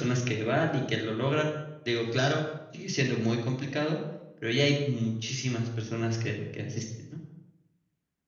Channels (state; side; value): identical; both; correlation 1.00